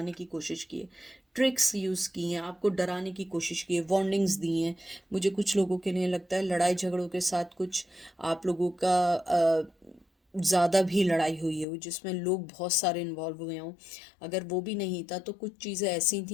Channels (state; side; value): drops out; right; at 11.7 s